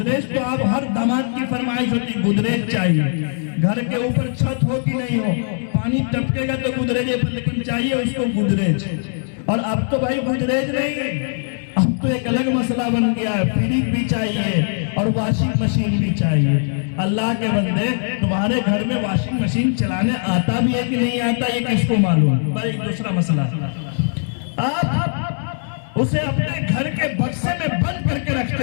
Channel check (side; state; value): right; silent; digital silence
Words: تو آپ ہر داماد کی فرمائش ہوتی، گودریج چاہیے۔ گھر کے اوپر چھت ہو کہ نہیں ہو، پانی ٹپکے گا تو گودریج پر، لیکن چاہیے اس کو گودریج۔ اور اب تو بھائی گودریج نہیں، اب تو ایک الگ مسئلہ بن گیا ہے، فریج بھی چاہیے اور واشنگ مشین بھی چاہیے۔ اللہ کے بندے، تمہارے گھر میں واشنگ مشین چلانے آتا بھی ہے کہ نہیں آتا یہ کس کو معلوم؟ پر ایک دوسرا مسئلہ، آپ اسے اپنے گھر کے بکسے میں بند کر کے